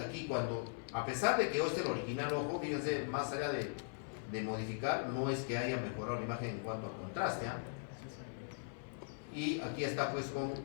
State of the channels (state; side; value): silent; right; 51 dB below the other